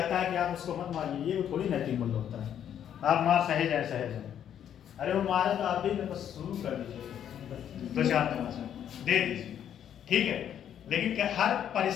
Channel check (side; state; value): right; quieter; 9.6 dB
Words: है कि आप उसको मत मारिए, ये थोड़ी नैतिक मूल्य होता है। आप मार सहे जाए, अरे वो मारे तो आप भी बस शुरू कर दीजिए, 2-4 तमाचा दे दीजिए, ठीक है। लेकिन क्या हर